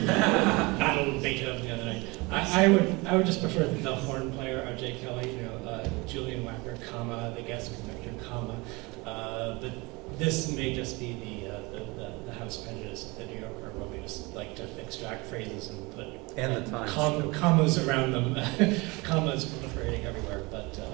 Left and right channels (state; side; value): quieter; left; 25.2 dB